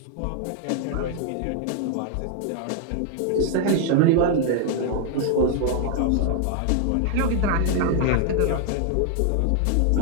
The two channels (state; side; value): different; both; correlation 0.00